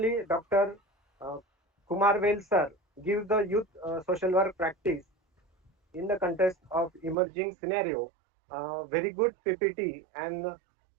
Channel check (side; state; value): left; drops out; at 7.2 s